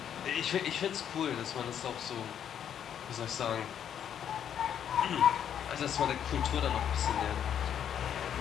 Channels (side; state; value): right; quieter; 9.1 dB